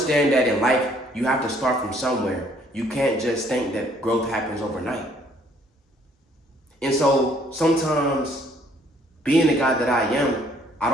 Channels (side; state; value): both; normal; correlation 0.63